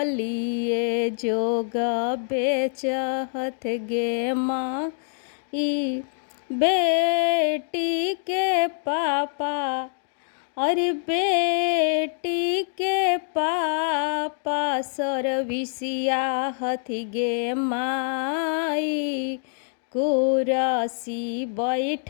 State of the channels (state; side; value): silent; right; digital silence